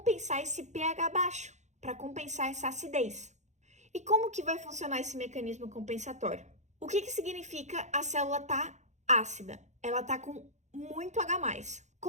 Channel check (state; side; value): late; left; 0.34 ms